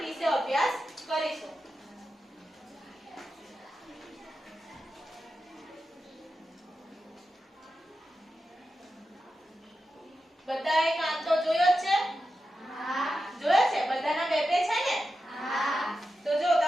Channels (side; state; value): both; normal; correlation 0.90